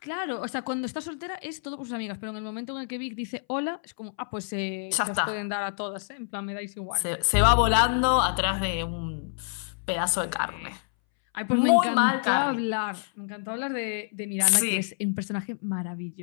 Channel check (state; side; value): silent; right; 60 dB below the other